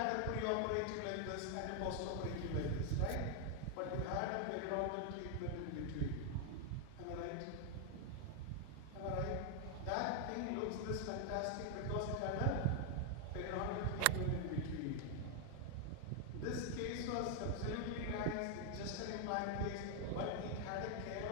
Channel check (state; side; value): different; both; correlation 0.00